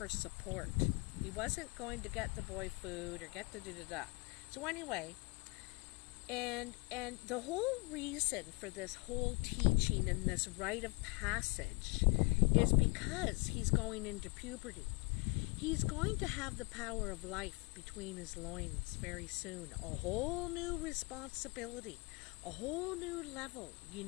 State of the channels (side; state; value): right; quieter; 29.2 dB